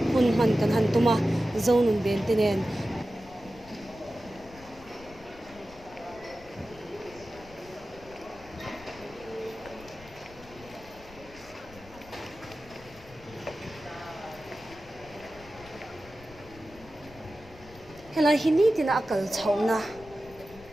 hun man kan han tuma Zonun ben tenen hela hini tina akal chhauna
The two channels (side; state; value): left; noise; rumble, 21 dB below the sound